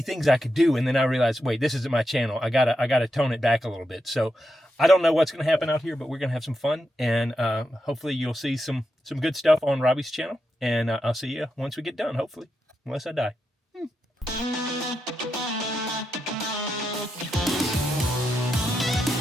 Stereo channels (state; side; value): normal; both; correlation 0.86